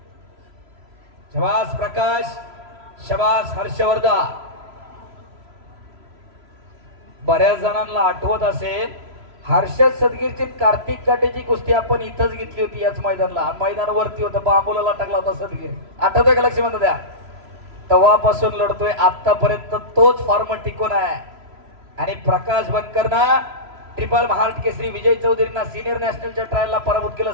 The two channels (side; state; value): left; late; 3.0 ms